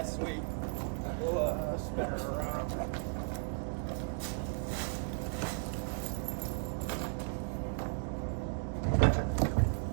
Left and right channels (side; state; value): left; silent; digital silence